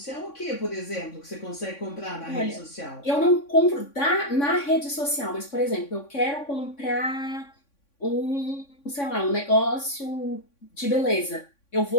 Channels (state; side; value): late; right; 3.6 ms